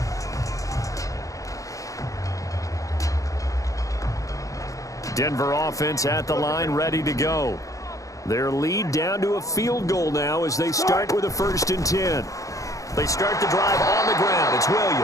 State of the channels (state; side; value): late; right; 0.16 ms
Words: Denver offense at the line, ready to go. Their lead down to a field goal now as they start with a 1st and 10. They start the drive on the ground. It's